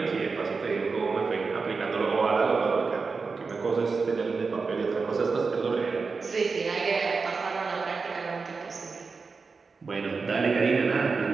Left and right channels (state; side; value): quieter; left; 4.6 dB